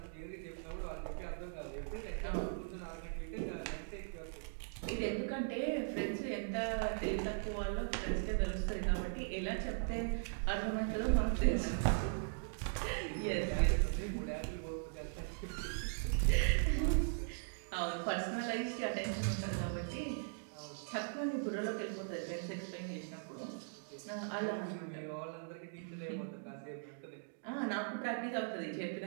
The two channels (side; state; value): left; silent; digital silence